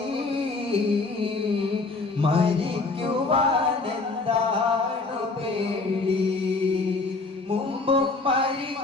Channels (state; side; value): quieter; right; 3.7 dB